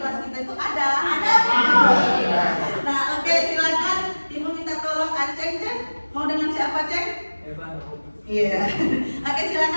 kita itu ada. Nah, oke, silakan ibu minta tolong Aceng, Ceng. Mau dengan siapa, Ceng? Iya. Oke,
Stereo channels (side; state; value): both; inverted; correlation -1.00